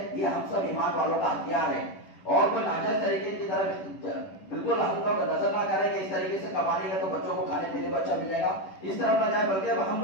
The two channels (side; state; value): right; late; 10 ms